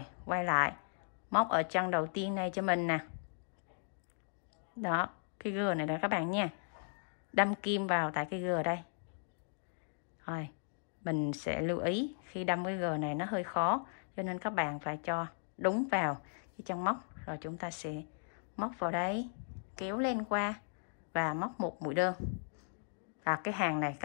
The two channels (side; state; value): right; silent; digital silence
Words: quay lại, móc ở chân đầu tiên này cho mình nè. Đó, cái G này đó các bạn nha. Đâm kim vào tại cái G đây. Rồi, mình sẽ lưu ý khi đâm cái G này nó hơi khó, cho nên các bạn phải cho đúng vào cái chân móc. Rồi chúng ta sẽ móc vào đây, kéo lên qua và móc một mũi đơn. Và cái hàng này